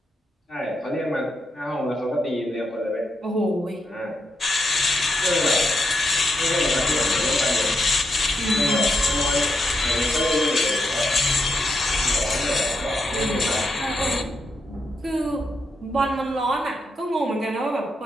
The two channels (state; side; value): normal; both; correlation 0.83